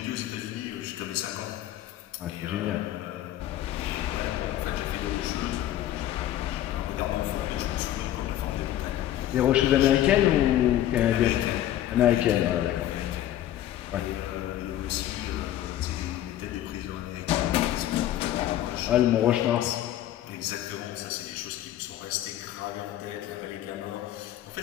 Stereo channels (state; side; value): quieter; right; 12.8 dB